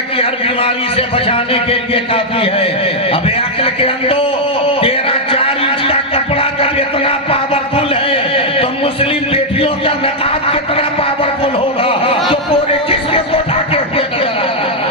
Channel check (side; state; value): both; normal; correlation -0.02